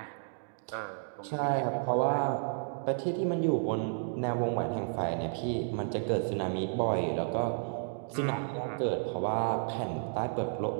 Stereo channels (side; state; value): left; silent; digital silence